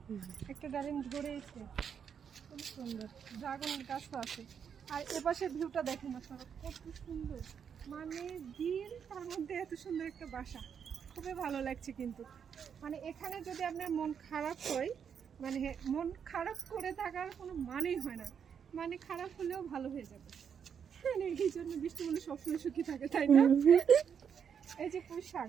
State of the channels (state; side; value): quieter; left; 7.4 dB